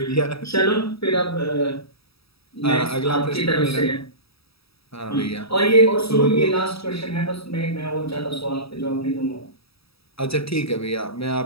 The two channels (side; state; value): right; late; 0.77 ms